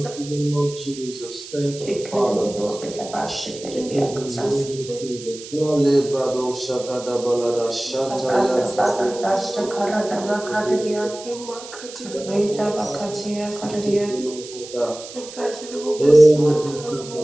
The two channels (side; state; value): right; noise; hiss, 14 dB below the sound